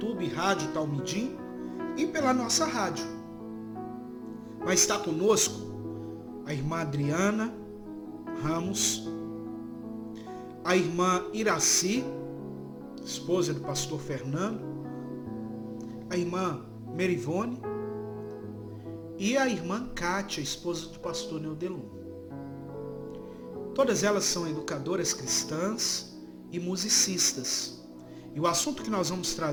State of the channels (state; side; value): identical; both; correlation 1.00